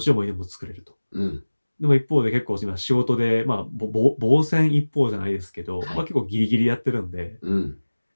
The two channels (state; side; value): inverted; both; correlation -1.00